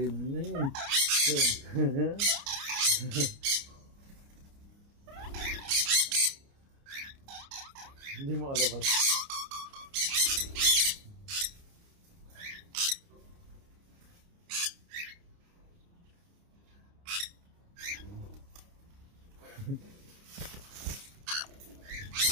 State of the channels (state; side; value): late; left; 29 ms